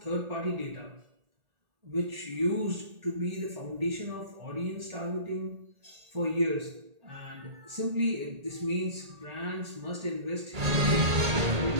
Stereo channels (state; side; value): late; left; 1.8 ms